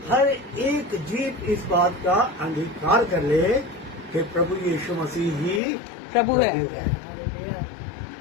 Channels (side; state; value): right; drops out; at 5.6 s